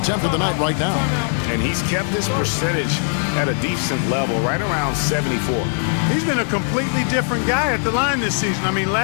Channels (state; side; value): silent; right; 66 dB below the other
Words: of the night right now. And he's kept this percentage at a decent level, right around 74. He's been a completely different guy at the line this season. I mean,